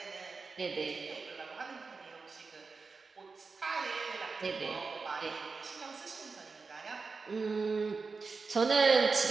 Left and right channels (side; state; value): left; quieter; 4.5 dB